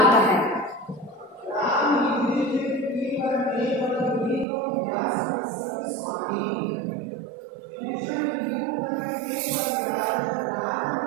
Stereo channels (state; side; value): drops out; left; at 4.5 s